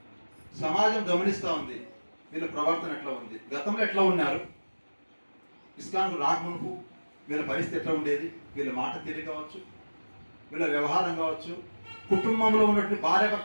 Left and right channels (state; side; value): inverted; both; correlation -1.00